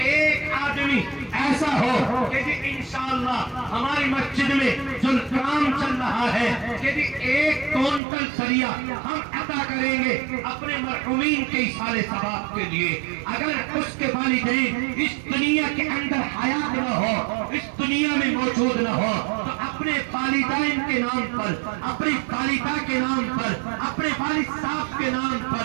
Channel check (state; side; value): drops out; left; at 8.0 s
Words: ایک آدمی ایسا ہو کہ انشاءاللہ ہماری مسجد میں جو کام چل رہا ہے کہ 1 کونٹل سریا ہم عطا کریں گے اپنے مرحومین کے ایصال ثواب کے لیے. اگر اس کے والدین اس دنیا کے اندر حیات نہ ہو اس دنیا میں موجود نہ ہو تو اپنے والدین کے نام پر اپنی والدہ کے نام پر اپنے والد صاحب کے نام